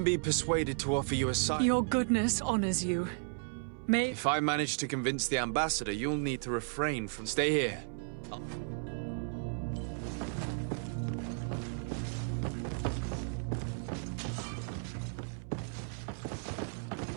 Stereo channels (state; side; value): silent; left; 55 dB below the other